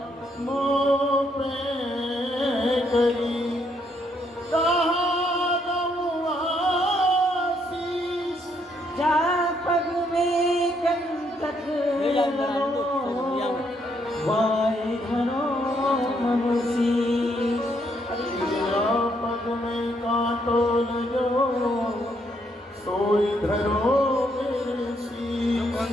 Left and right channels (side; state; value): both; normal; correlation 0.73